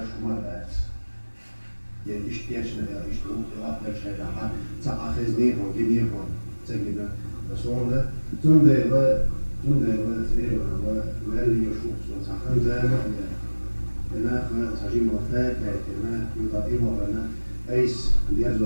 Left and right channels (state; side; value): inverted; both; correlation -1.00